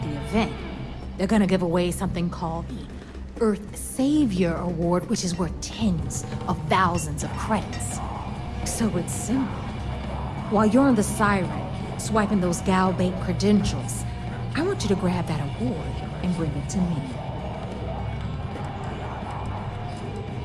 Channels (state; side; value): identical; both; correlation 1.00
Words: the event, they're gonna give away something called the Earth Savior Award, which is worth tens of thousands of credits. So it's simple. While you're on the Siren, swiping those Gal Bank credentials, I want you to grab that award and bring it to me.